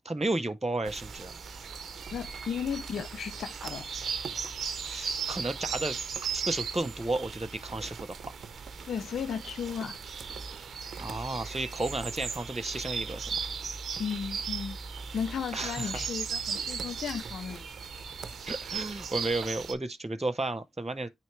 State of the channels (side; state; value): both; normal; correlation 0.78